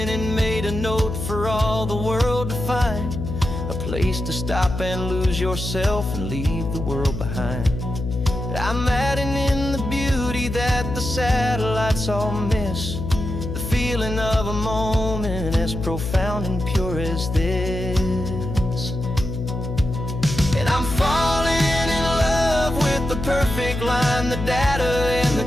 and made a note for all the world to find, a place to stop and lose yourself and leave the world behind. I'm adding in the beauty that the satellites all miss, the feeling of a moment as profound and pure as this. And I'm falling in love with the perfect line, the data and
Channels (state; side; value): noise; left; hum, 5 dB below the sound